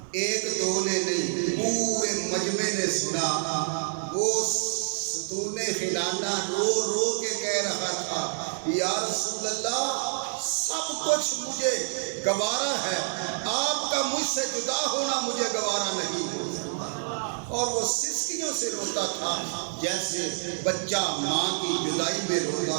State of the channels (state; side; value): silent; left; 58 dB below the other